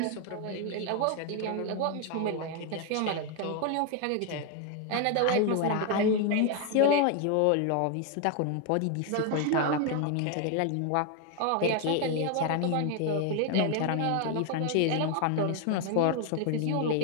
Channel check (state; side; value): different; both; correlation 0.01